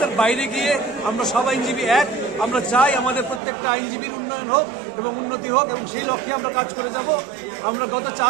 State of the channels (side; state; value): left; drops out; at 3.4 s